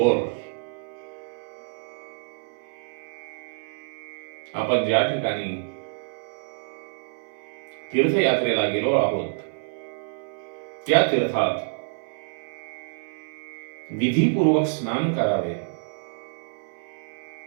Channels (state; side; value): silent; left; 59 dB below the other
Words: आपण ज्या ठिकाणी तीर्थयात्रेला गेलो आहोत त्या तीर्थात विधीपूर्वक स्नान करावे.